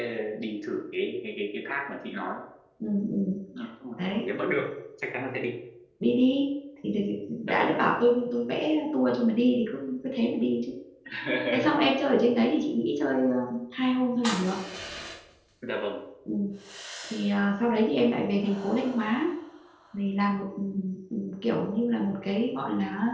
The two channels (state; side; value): identical; both; correlation 1.00